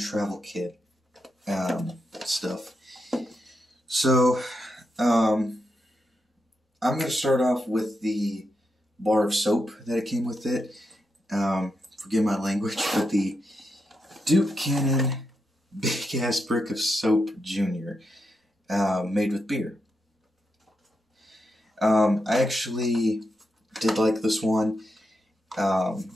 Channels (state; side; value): normal; both; correlation 0.84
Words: Kit stuff. So, I'm going to start off with the bar of soap that it came with it. Forgive my language, but the Duke Cannon Big Ass Brick of Soap Jr. Made with beer. I actually did like this one.